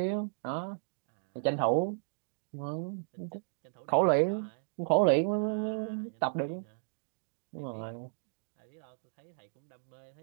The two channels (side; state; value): left; silent; digital silence